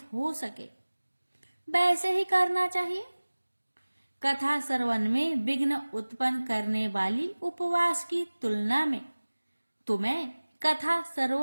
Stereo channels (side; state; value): both; inverted; correlation -1.00